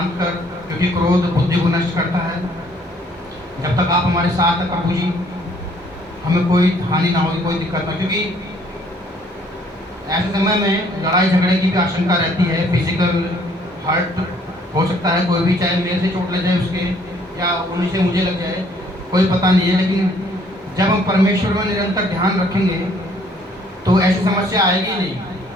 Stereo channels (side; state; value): both; normal; correlation 0.62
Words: कर, क्योंकि क्रोध बुद्धि को नष्ट करता है। जब तक आप हमारे साथ हैं प्रभु जी, हमें कोई हानि ना होगी, कोई दिक्कत ना, क्योंकि ऐसे समय में लड़ाई झगड़े की भी आशंका रहती है। फिजिकल हर्ट हो सकता है, कोई भी, चाहे मेरे से चोट लग जाए उसके, या उन्हीं से मुझे लग जाए, कोई पता नहीं है। लेकिन जब हम परमेश्वर में निरंतर ध्यान रखेंगे तो ऐसी समस्या आएगी नहीं।